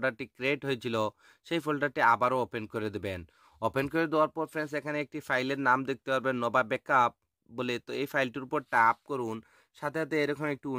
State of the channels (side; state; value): both; identical; correlation 1.00